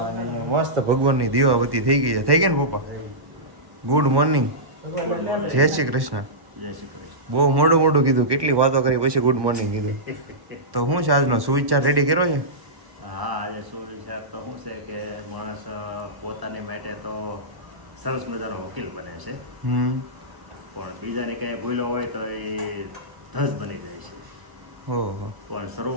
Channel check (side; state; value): left; late; 1.1 ms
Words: મસ્ત ભગવાનની દીવાબત્તી થઈ ગઈ છે. થઈ ગયા ને પપ્પા? ગુડ મોર્નિંગ, જય શ્રી કૃષ્ણ. જય શ્રી કૃષ્ણ. બહુ મોડું કીધું, કેટલી વાતો કરી પછી ગુડ મોર્નિંગ કીધી. તો શું છે આજનો સુવિચાર રેડી કર્યો છે? હા, આજે સુવિચાર તો શું છે કે માણસ પોતાની માટે તો સરસ મજાનો વકીલ બને છે, પણ બીજાને ક્યાંય ભૂલો હોય તો એ ધસ બની જાય છે. ઓહો. પણ